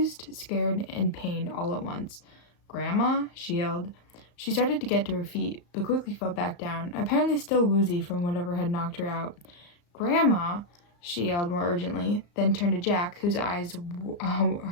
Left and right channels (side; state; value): right; late; 34 ms